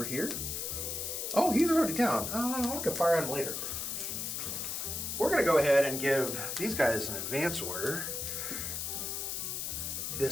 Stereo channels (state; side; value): noise; left; hiss, 3 dB below the sound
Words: here. Oh, he's already down. I can fire on him later. We're going to go ahead and give these guys an advance order.